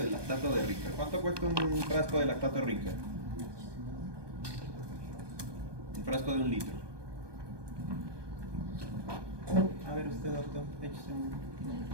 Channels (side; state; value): left; late; 1.2 ms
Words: lactato de Ringer. ¿Cuánto cuesta un frasco de lactato de Ringer? Un frasco de 1 litro. A ver usted, doctor, échese un...